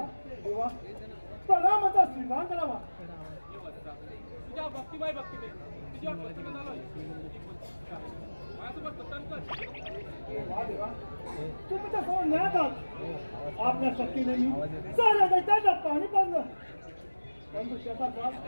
देवा प्रणामाचा स्वीकार करावा. तुझ्या भक्तिमय भक्तीने तुझ्यावर प्रसन्न झालोय. माझ्यासोबत प्रसन्न वा देवा तुम्ही तर समोर न्यायात आहात. आपल्या शक्तीने मी साऱ्या दैत्यांना पाणी पाजलं, परंतु त्याचा त्रास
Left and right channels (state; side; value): inverted; both; correlation -1.00